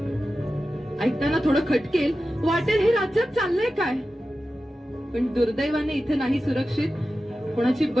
खटकेल, वाटेल हे राज्यात चाललंय काय. पण दुर्दैवाने इथे नाही सुरक्षित कोणाची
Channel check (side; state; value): both; normal; correlation 0.93